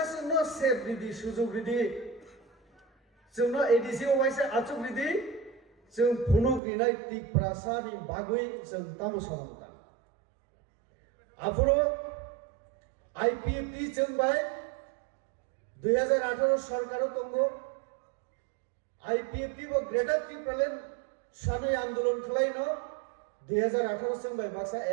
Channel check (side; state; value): left; drops out; at 6.6 s